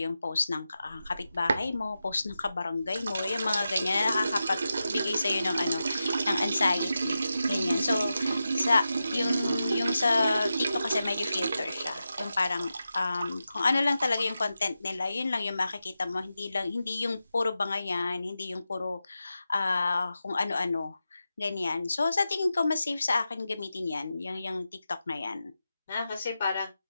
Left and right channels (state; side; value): inverted; both; correlation -0.90